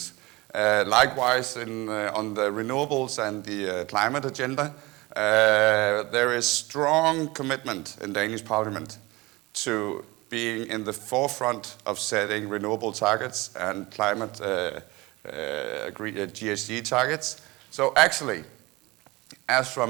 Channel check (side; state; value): left; quieter; 22.3 dB